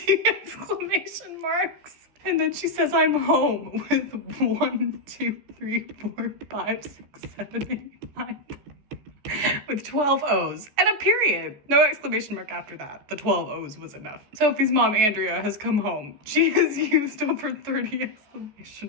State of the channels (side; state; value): left; late; 14 ms